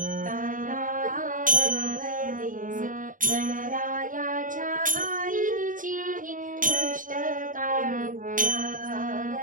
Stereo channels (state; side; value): late; left; 0.38 ms